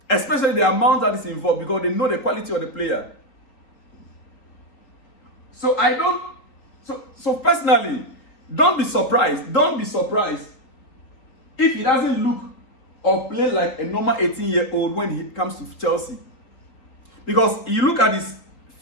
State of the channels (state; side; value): late; right; 4.0 ms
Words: Especially the amount that is involved, because they know the quality of the player. So personally, don't be surprised if he doesn't look or play like a normal 18-year-old when he comes to Chelsea. Because you look at his